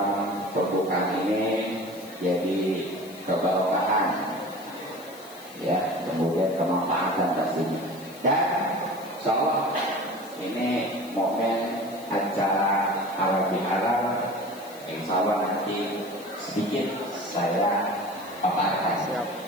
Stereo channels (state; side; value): noise; left; hiss, 20 dB below the sound